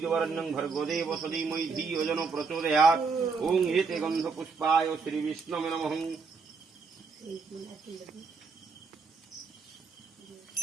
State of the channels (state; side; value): quieter; left; 4.8 dB